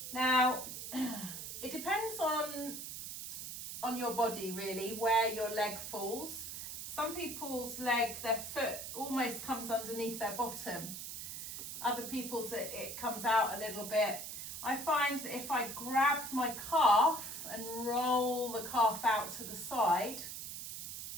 Now, it depends on on your body really, where your leg falls. Some people's leg, their foot almost comes underneath their bottom. Other people's it comes out a little bit. I find that if I grab my calf and roll the calf out to the side,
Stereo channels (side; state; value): right; noise; hiss, 8 dB below the sound